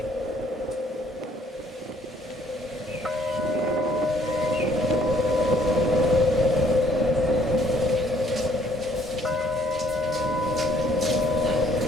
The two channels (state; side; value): normal; both; correlation 0.63